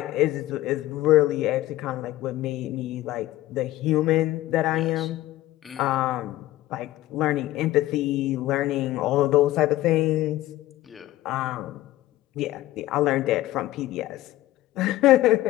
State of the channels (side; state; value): right; quieter; 16.0 dB